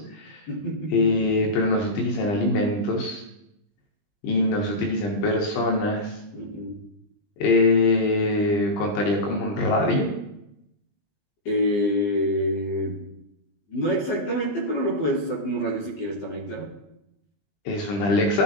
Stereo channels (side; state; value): right; late; 20 ms